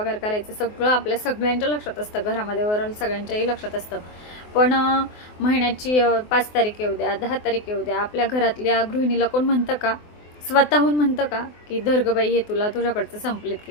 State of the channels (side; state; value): right; late; 24 ms